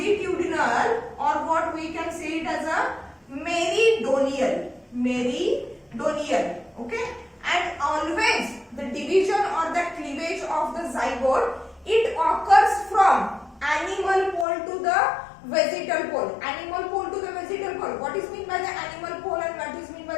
or what we can say it as a meridonial, okay, and always the division or the cleavage of the zygote, it occurs from animal pole to the vegetal pole. Animal pole to the vegetal pole. What is meant by the animal pole and what is meant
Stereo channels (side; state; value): right; drops out; at 14.5 s